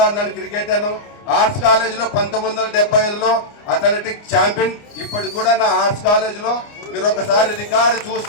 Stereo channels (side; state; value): right; late; 29 ms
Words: ఆడినాను, క్రికెట్ ఆను. ఆర్ట్స్ కాలేజీలో 1975లో అథ్లెటిక్ ఛాంపియన్. ఇప్పటికి కూడా నా ఆర్ట్స్ కాలేజీలో మీరు ఒకసారి రికార్డు